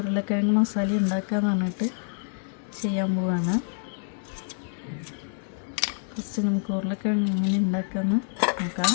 മസാലയും ഉണ്ടാക്കാമെന്ന് പറഞ്ഞിട്ട് ചെയ്യാൻ പോവാണ്. ഫസ്റ്റ് നമുക്ക് ഉരുളക്കിഴങ്ങ് എങ്ങനെ ഉണ്ടാക്കാമെന്ന് നോക്കാം.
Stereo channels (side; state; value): right; silent; digital silence